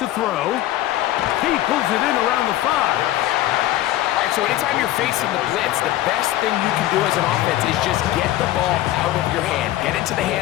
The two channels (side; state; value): right; quieter; 14.8 dB